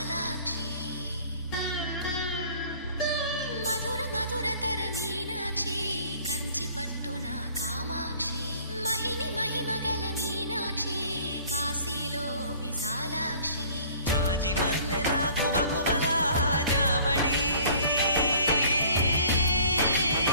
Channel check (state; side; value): inverted; both; correlation -0.52